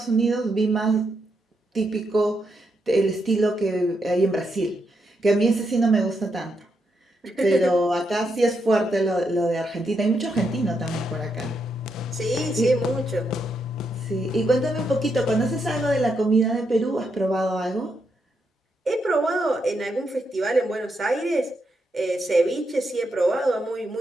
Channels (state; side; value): normal; both; correlation 0.81